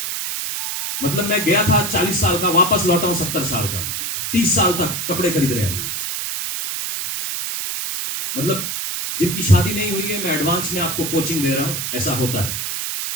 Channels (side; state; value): right; noise; hiss, 3 dB below the sound